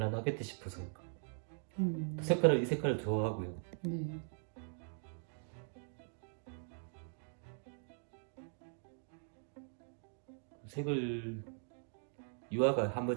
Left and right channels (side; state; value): left; silent; 51 dB below the other